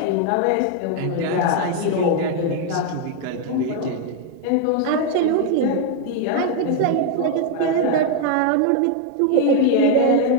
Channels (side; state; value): both; different; correlation 0.00